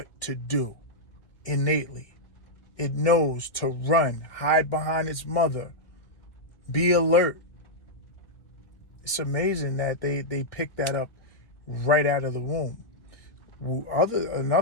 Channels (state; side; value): late; right; 1.3 ms